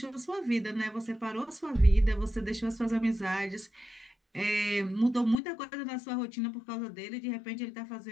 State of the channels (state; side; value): drops out; right; at 5.4 s